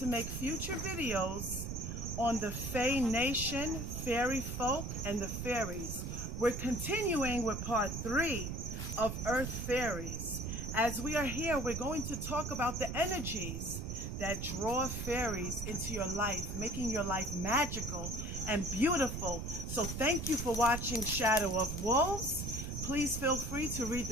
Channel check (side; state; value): right; noise; rumble, 5 dB below the sound